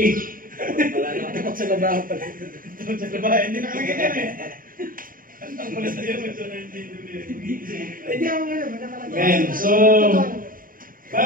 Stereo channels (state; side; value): late; left; 0.41 ms